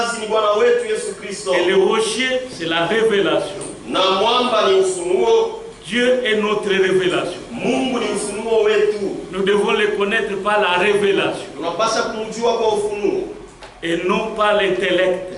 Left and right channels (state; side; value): identical; both; correlation 1.00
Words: ni Bwana wetu Yesu Kristo. Et le rocher c'est la révélation. Na mwamba ni ufunuo. Dieu est notre révélation. Mungu ni ufunuo wetu. Nous devons le connaître par la révélation. Tunapaswa kumjua kwa ufunuo. Et non par